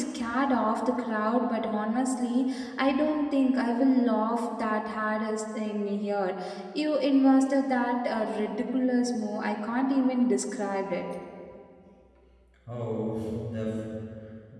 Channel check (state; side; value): identical; both; correlation 1.00